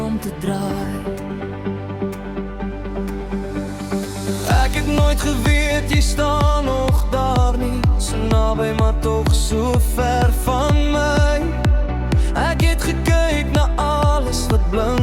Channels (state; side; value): identical; both; correlation 1.00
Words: om te draai. Ek het nooit geweet jy staan nog daar nie, so naby maar tog so ver van my. Ek het gekyk na alles wat